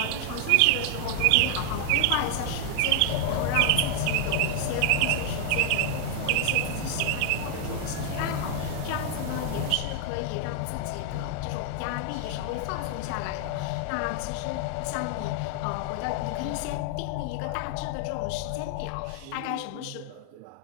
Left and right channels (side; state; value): both; different; correlation 0.00